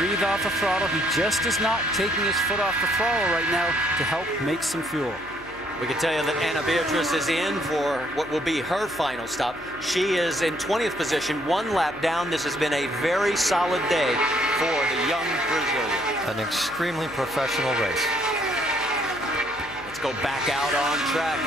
off the throttle. He just is not taking his foot off the throttle right now to help make some fuel. We can tell you that Ana Beatriz is in for what will be her final stop. She is in 20th position, 1 lap down. This has been a very solid day for the young Brazilian. An extremely professional race. Let's go back out on track,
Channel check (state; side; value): noise; left; hum, 22 dB below the sound